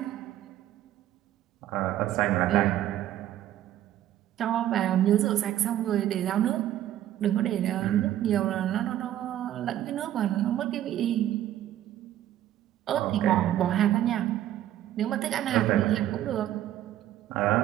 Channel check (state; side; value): quieter; left; 12.4 dB